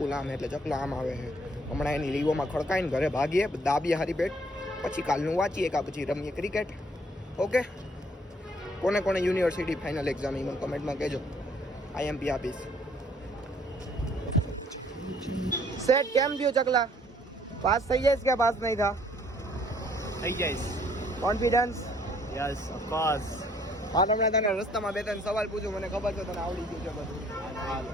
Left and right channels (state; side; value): normal; both; correlation 0.62